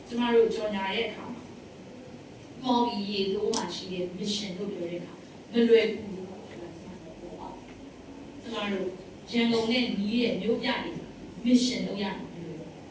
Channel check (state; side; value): identical; both; correlation 1.00